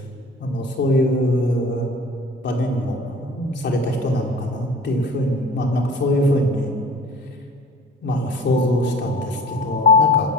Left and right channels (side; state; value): both; normal; correlation 0.44